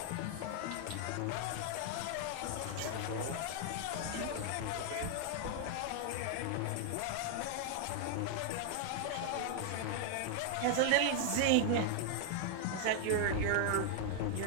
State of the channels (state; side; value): different; both; correlation 0.00